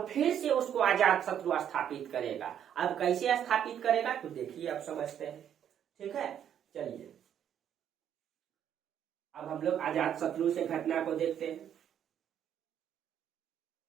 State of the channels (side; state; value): left; quieter; 9.5 dB